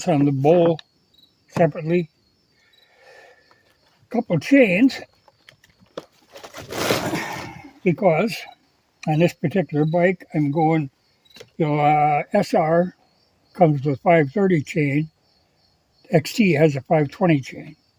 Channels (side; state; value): both; identical; correlation 1.00